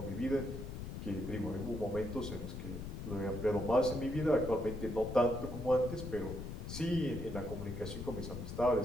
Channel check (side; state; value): left; noise; rumble, 7 dB below the sound